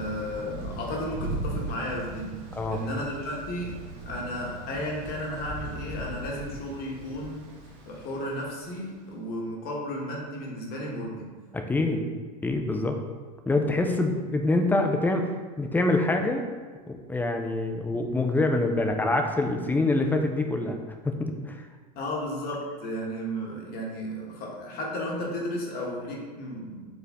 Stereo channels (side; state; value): both; normal; correlation 0.56